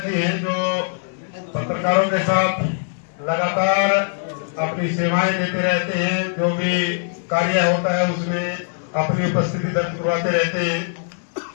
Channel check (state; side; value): silent; right; digital silence